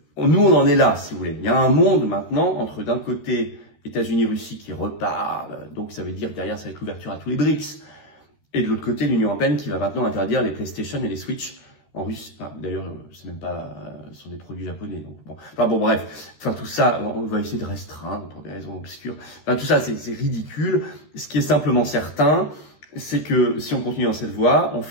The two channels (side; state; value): right; late; 13 ms